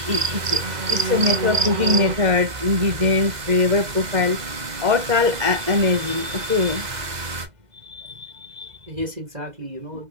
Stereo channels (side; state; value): left; late; 2.0 ms